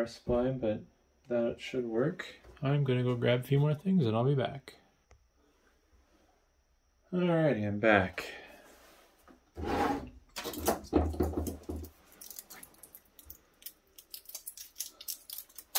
supply, but that should work. I'm gonna go grab a few more things and I'll be back. Alrighty, I'm back.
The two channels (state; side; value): identical; both; correlation 1.00